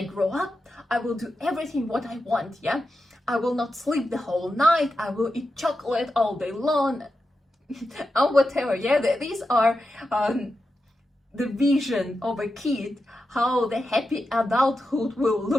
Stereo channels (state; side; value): normal; both; correlation 0.89